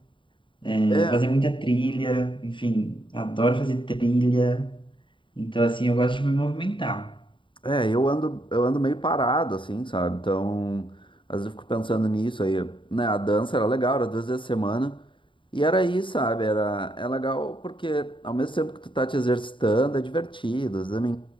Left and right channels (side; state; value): right; late; 0.24 ms